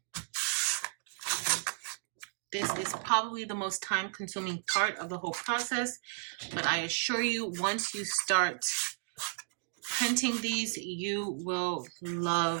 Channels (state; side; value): silent; left; 55 dB below the other